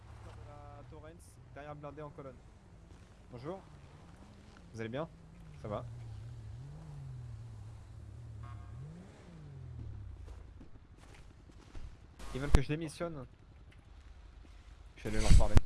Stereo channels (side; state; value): both; identical; correlation 1.00